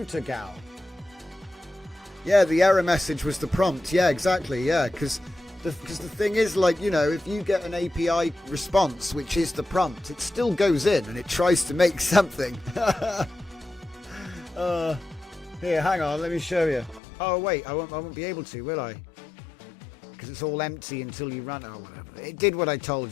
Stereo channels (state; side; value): drops out; right; at 17.0 s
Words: gal. Yeah, the error message was the prompt. Yeah, exactly. Yeah, because the thing is, like, you know, if you get an API response, which is the prompt, it still goes in and it tries to make something. Here, hang on, let me show you. Oh wait, I won't be able to, will I? Because it's all empty until you run. Oh, whatever. It did what I